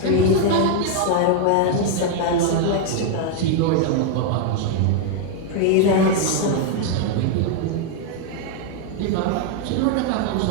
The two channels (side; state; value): both; different; correlation 0.00